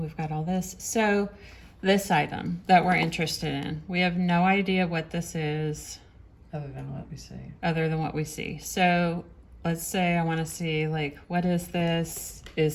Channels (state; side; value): identical; both; correlation 1.00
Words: got all this. So this item that we're interested in, we have no idea what this is Other than what we see. other than what we see. So let's say I want to see, like, what is this?